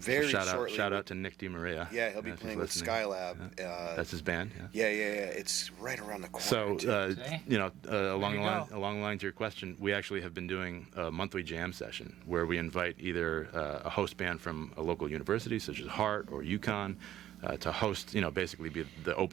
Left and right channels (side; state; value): left; quieter; 12.3 dB